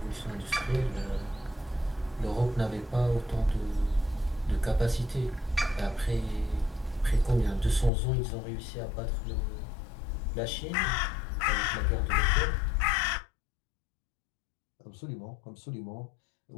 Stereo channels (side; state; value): right; drops out; at 7.9 s